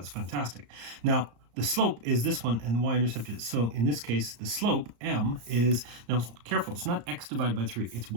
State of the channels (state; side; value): late; left; 34 ms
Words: fantastic. Now, the slope is this one, and the y-intercept is, so in this case, the slope, m, is, now careful, it's not x divided by 3, it's